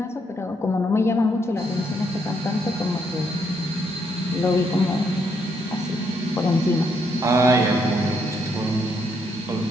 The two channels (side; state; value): both; normal; correlation 0.75